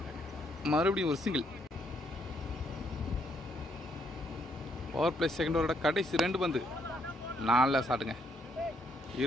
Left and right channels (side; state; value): both; normal; correlation 0.72